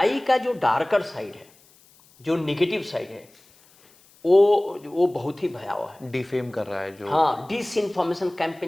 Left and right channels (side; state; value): left; noise; hiss, 29 dB below the sound